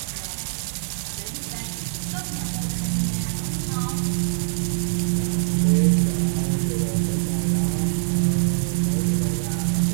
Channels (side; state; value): left; silent; digital silence